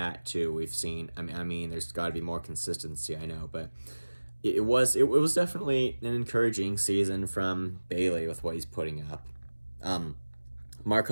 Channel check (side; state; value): both; inverted; correlation -1.00